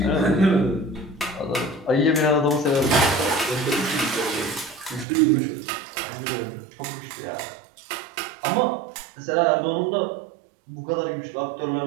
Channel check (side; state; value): left; drops out; at 5.1 s